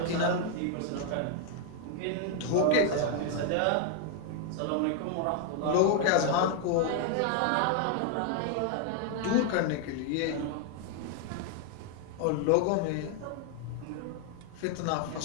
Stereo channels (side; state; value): both; different; correlation 0.00